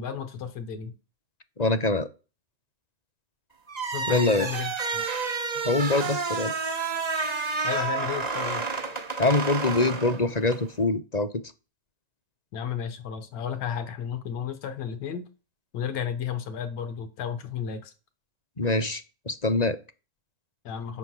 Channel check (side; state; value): right; late; 1.9 ms